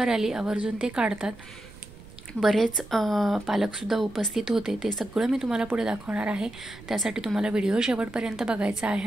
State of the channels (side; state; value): right; noise; rumble, 19 dB below the sound